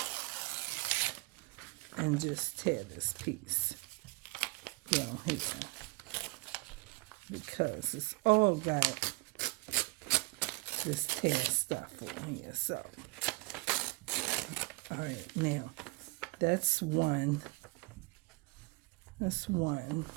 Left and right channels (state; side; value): quieter; left; 25.4 dB